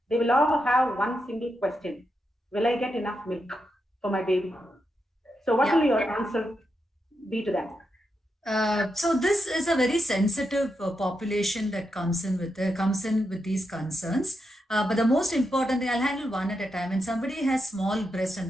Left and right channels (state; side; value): normal; both; correlation 0.85